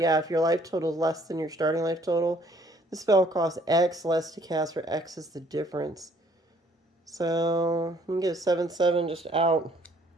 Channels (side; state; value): both; normal; correlation 0.61